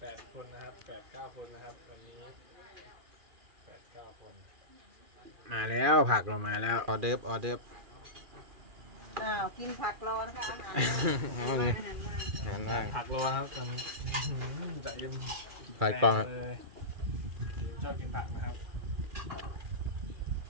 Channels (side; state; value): left; late; 2.4 ms